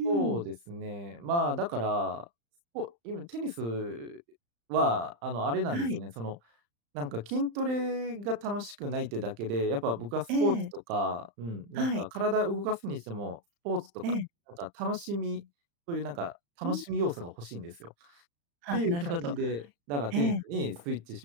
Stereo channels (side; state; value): left; late; 35 ms